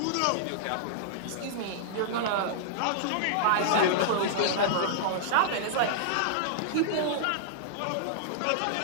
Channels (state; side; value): different; both; correlation -0.01